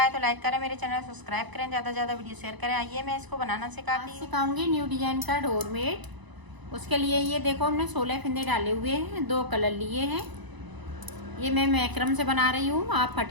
तो लाइक करें, मेरे चैनल सब्सक्राइब करें, ज़्यादा से ज़्यादा वीडियो शेयर करें। आइए मैं इसको बनाना सिखाऊंगी न्यू डिजाइन का डोरमेट। उसके लिए ये देखो, हमने 16 फंदे डाले हुए हैं, 2 कलर लिए हैं। ये मैं मैक्रम से बना रही हूँ, आप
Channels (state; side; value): late; left; 1.0 ms